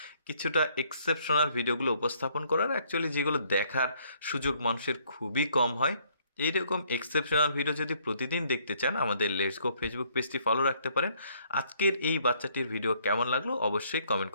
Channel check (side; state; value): both; inverted; correlation -0.66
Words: কিছুটা এক্সেপশনাল ভিডিওগুলো উপস্থাপন করার, অ্যাকচুয়ালি যেগুলো দেখার সুযোগ মানুষের খুবই কম হয়। এইরকম এক্সেপশনাল ভিডিও যদি প্রতিদিন দেখতে চান, আমাদের লেটস গো ফেসবুক পেজটি ফলো রাখতে পারেন। আজকের এই বাচ্চাটির ভিডিও কেমন লাগলো অবশ্যই কমেন্ট